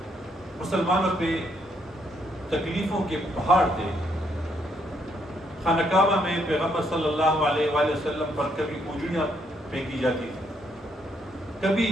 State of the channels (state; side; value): normal; both; correlation 0.73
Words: مسلمانوں پہ تکلیفوں کے پہاڑ تھے۔ خانہ کعبہ میں پیغمبر صلی اللہ علیہ وآلہ وسلم پر کبھی اونجڑیاں پھینکی جاتی تھی، کبھی